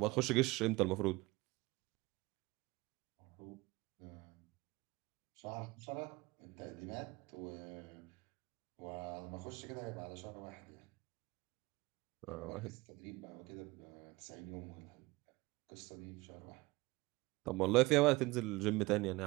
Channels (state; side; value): quieter; left; 21.9 dB